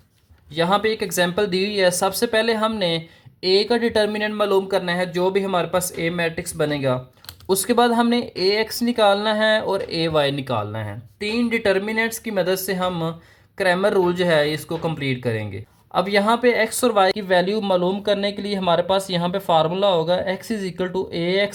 यहाँ पे एक एग्जांपल दी हुई है। सबसे पहले हमने ए का डिटर्मिनेंट मालूम करना है, जो भी हमारे पास ए मैट्रिक्स बनेगा। उसके बाद हमने ए एक्स निकालना है और ए वाई निकालना है। तीन डिटर्मिनेंट्स की मदद से हम क्रैमर रूल जो है इसको कंप्लीट करेंगे। अब यहाँ पे एक्स और वाई की वैल्यू मालूम करने के लिए हमारे पास यहाँ पे फार्मूला होगा x is equal to a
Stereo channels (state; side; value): identical; both; correlation 1.00